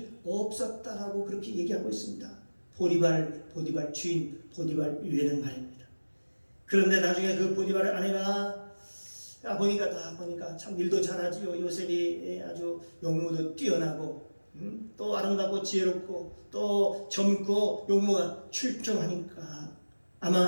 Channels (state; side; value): inverted; both; correlation -1.00